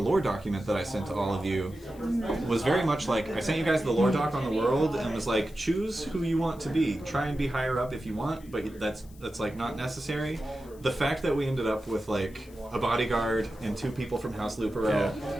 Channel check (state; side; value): noise; left; hiss, 26 dB below the sound